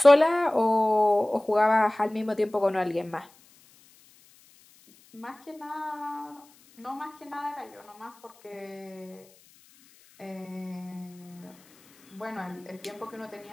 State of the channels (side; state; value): left; noise; hiss, 28 dB below the sound